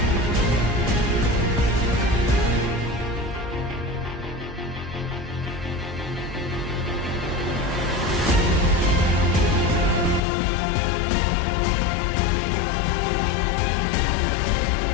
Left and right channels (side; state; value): right; drops out; at 10.2 s